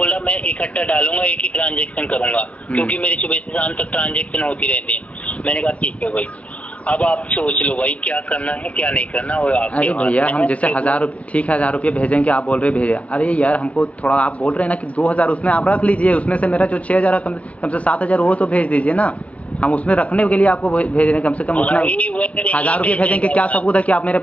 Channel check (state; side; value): late; right; 0.065 ms